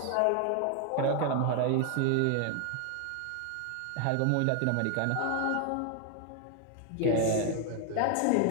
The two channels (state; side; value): different; both; correlation 0.00